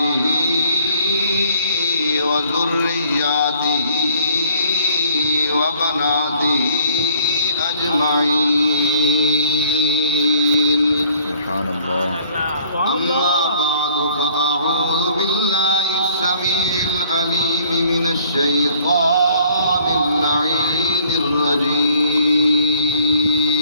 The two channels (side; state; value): both; inverted; correlation -0.60